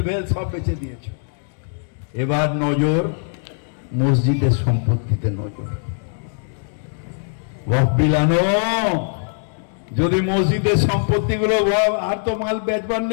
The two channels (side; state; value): right; silent; digital silence